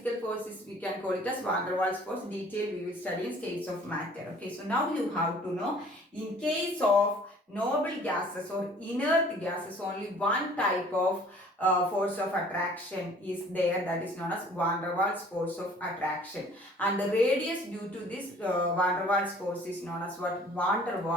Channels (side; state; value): both; normal; correlation 0.53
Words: force is, we can call it as van der Waals force. Detail we will study in states of matter. Okay, so now you have to know, in case of noble gases or inert gases, only one type of force of attraction is there, that is known as van der Waals force of attraction, and the radius due to this van der Waals force is known as what? Van der